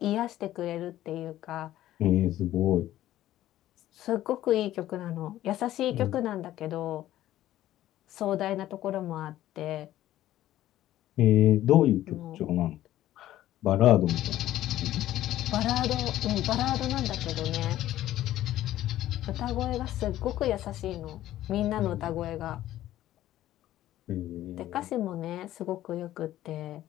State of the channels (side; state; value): right; quieter; 13.8 dB